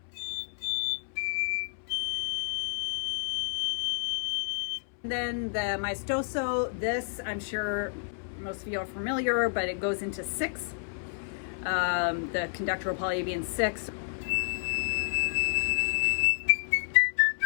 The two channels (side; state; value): right; silent; 58 dB below the other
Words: And then the maestoso, this I'm sure most of you are familiar, but it goes into 6. The conductor will probably be in 6.